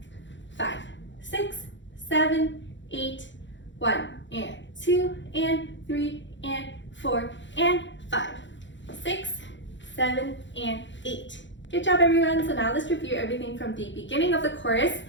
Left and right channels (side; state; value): right; late; 0.54 ms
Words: 5, 6, 7, 8, 1 and 2 and 3 and 4 and 5, 6, 7 and 8. Good job everyone. So now let's review everything from the beginning of the chorus